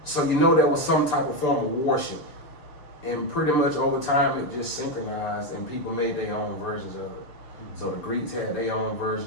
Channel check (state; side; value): late; right; 6.8 ms